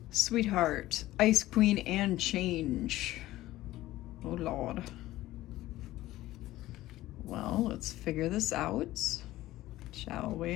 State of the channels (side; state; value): right; quieter; 16.0 dB